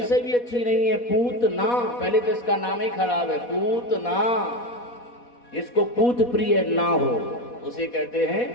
से भी अच्छी नहीं है। पूतना, पहले तो इसका नाम ही खराब है, पूतना। इसको पूत प्रिय ना हो उसे कहते हैं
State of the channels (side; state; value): right; late; 4.1 ms